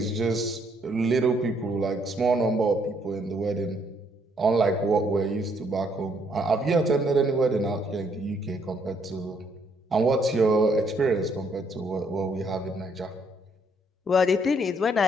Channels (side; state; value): both; normal; correlation 0.69